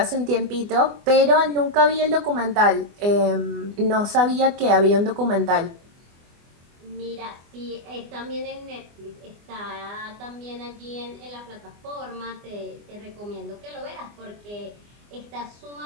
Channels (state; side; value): late; left; 24 ms